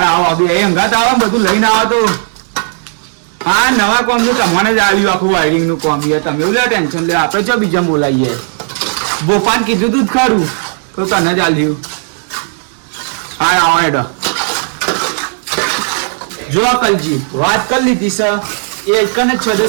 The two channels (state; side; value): silent; left; 56 dB below the other